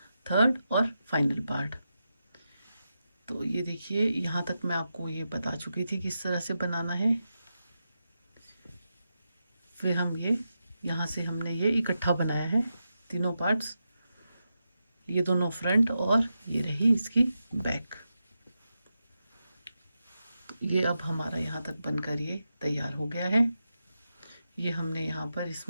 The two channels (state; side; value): inverted; both; correlation -0.88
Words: थर्ड और फाइनल पार्ट। तो ये देखिए, यहाँ तक मैं आपको ये बता चुकी थी किस तरह से बनाना है। फिर हम ये यहाँ से हमने ये इकट्ठा बनाया है तीनों पार्ट्स, ये दोनों फ्रंट और ये रही इसकी बैक। तो ये अब हमारा यहाँ तक बनकर ये तैयार हो गया है। ये हमने यहाँ पर